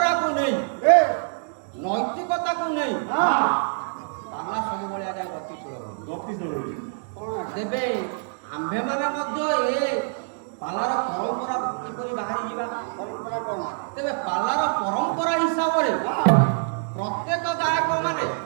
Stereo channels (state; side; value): silent; left; digital silence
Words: ନେଇ ନୈତିକତାକୁ ନେଇ ପାଲା ସବୁବେଳେ ଆଜ୍ଞା ଗତିଶୀଳ ତେବେ ଆମ୍ଭେମାନେ ମଧ୍ୟ ଏ ପାଲାର ପରମ୍ପରା କିପରି ବାହାରି ଯିବା। ପରମ୍ପରା କଣ? ତେବେ ପାଲାର ପରମ୍ପରା ହିସାବରେ ପ୍ରତ୍ୟେକ ଗାୟକ ମାନେ